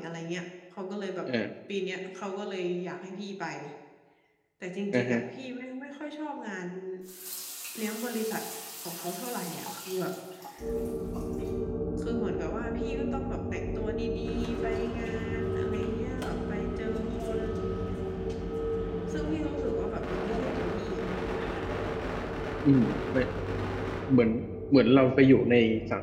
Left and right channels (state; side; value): identical; both; correlation 1.00